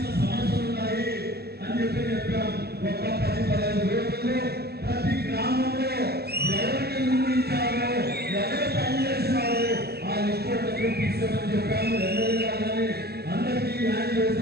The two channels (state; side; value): late; left; 0.46 ms